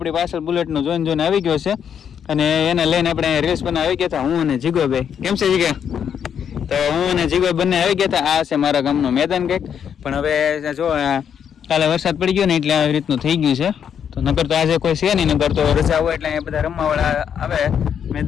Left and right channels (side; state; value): right; quieter; 8.2 dB